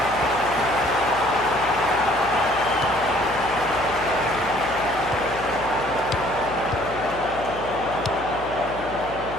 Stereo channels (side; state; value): left; noise; hum, 15 dB below the sound